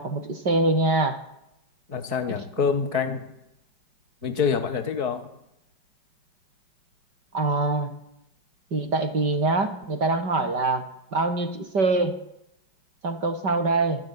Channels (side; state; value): left; late; 4.6 ms